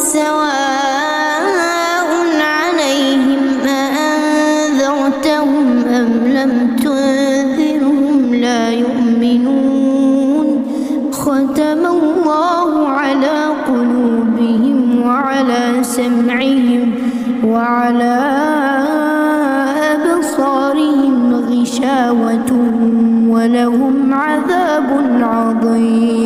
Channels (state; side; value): identical; both; correlation 1.00